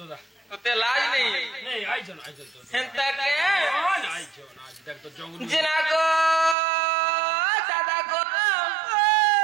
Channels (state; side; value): drops out; left; at 6.6 s